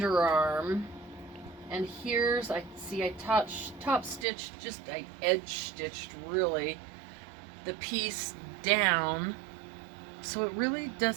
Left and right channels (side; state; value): left; drops out; at 4.2 s